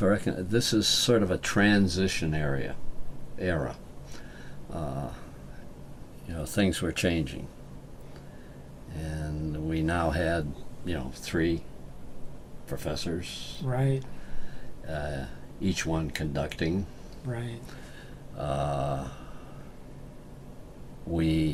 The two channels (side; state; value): both; identical; correlation 1.00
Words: reckon this is sort of a transition era. Things were changing, and we now had 3 professors, Right. each one conducting. Right.